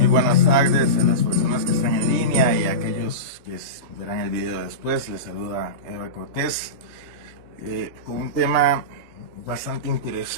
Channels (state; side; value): late; left; 3.2 ms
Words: buenas tardes a las personas que están en línea y a aquellos que verán el video después. Les saluda Eva Cortés con un tema bastante